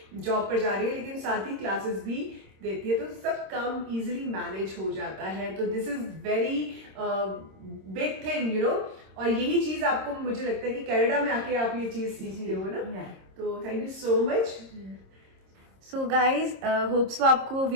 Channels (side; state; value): left; late; 26 ms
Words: जॉब पर जा रही है, लेकिन साथ ही क्लासेस भी देती है, तो सब काम इजीली मैनेज हो जाता है। तो this is very big thing, you know. और यही चीज आपको, मुझे लगता है कि कनाडा में आके आप ये चीज सीखते हो ना। तो thank you so much. So guys hopes वो आपको